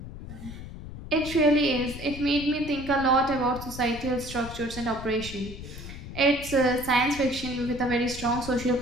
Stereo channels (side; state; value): left; noise; rumble, 11 dB below the sound